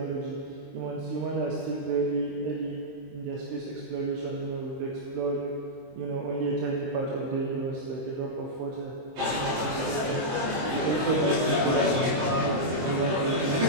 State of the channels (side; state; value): left; late; 23 ms